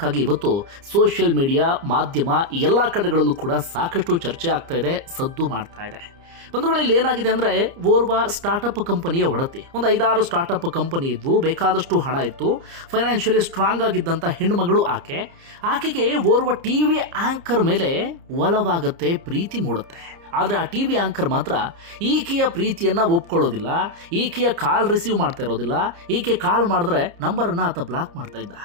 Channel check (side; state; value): left; late; 30 ms